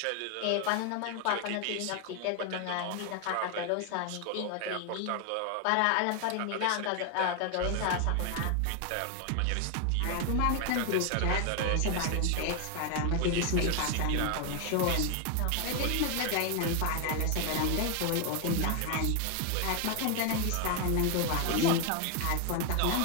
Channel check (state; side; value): different; both; correlation 0.01